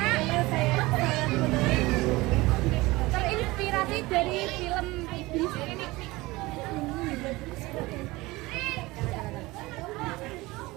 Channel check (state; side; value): quieter; left; 20.9 dB